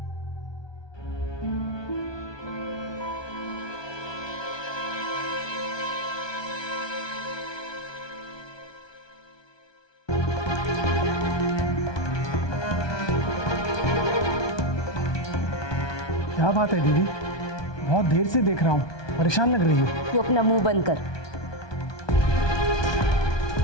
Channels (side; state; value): right; late; 1.2 ms